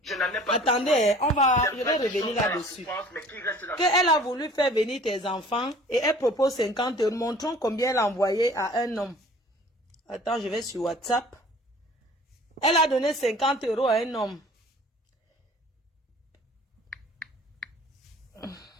Je n'en ai pas Attendez, besoin. on va, J'ai je fait vais des revenir choses dans la là-dessus. souffrance, mais qui reste dans Qu'elle a voulu faire venir tes enfants et elle propose 50 €. Montrons combien elle a envoyé à un homme. Attends, je vais sur WhatsApp. Elle a donné 50 € à un homme.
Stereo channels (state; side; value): normal; both; correlation 0.49